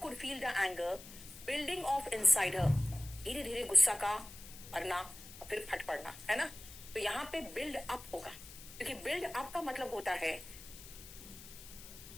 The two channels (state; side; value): noise; left; hiss, 15 dB below the sound